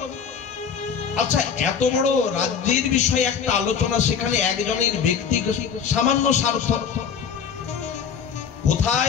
আচ্ছা এত বড় রাজ্যের বিষয়ে একটা আলোচনা, সেখানে একজনের ব্যক্তিগত সামান্য স্বার্থ,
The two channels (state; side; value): quieter; right; 7.0 dB